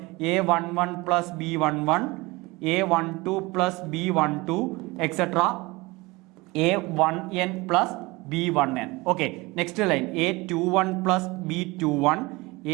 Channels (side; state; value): left; quieter; 22.9 dB